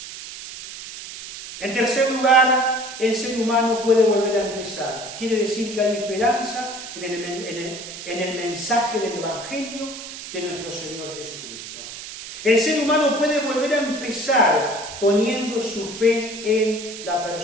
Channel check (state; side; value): noise; right; hiss, 11 dB below the sound